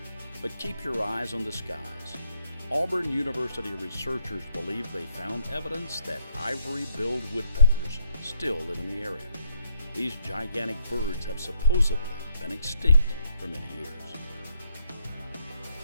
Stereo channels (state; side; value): inverted; both; correlation -0.70